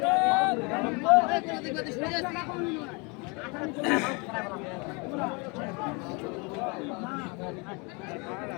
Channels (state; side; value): quieter; right; 30.4 dB